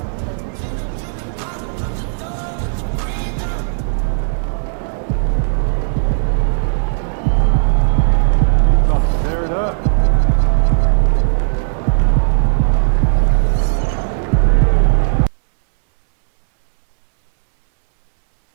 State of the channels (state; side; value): silent; left; digital silence